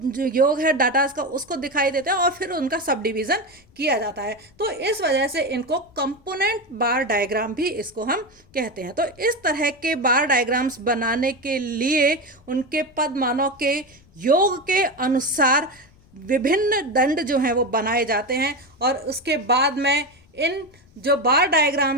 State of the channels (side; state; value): left; noise; rumble, 29 dB below the sound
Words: है डाटा का, उसको दिखाई देता है और फिर उनका सब डिवीजन किया जाता है। तो इस वजह से इनको कंपोनेंट बार डायग्राम भी इसको हम कहते हैं। तो इस तरह के बार डायग्राम्स बनाने के लिए उनके पद मानों के योग के अनुसार विभिन्न दंड जो हैं वो बनाए जाते हैं और उसके बाद में इन जो बार